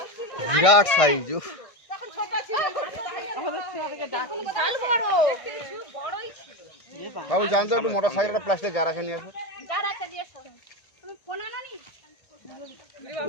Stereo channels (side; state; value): right; late; 1.6 ms